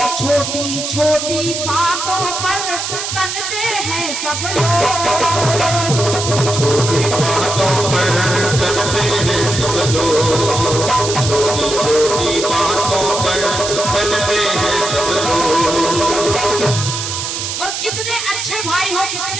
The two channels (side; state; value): right; noise; hiss, 4 dB below the sound